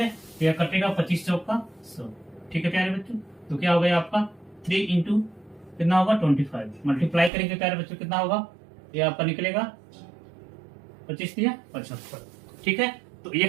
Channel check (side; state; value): left; drops out; at 7.3 s